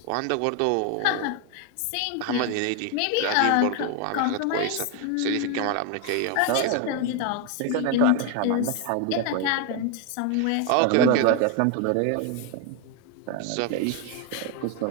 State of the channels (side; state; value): both; different; correlation 0.01